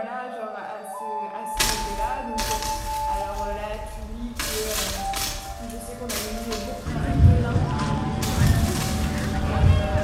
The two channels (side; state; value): both; identical; correlation 1.00